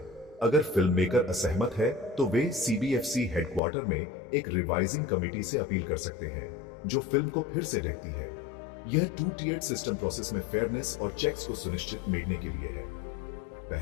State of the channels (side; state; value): right; drops out; at 3.6 s